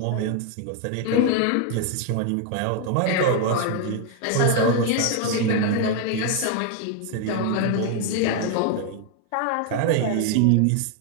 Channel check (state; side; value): different; both; correlation 0.01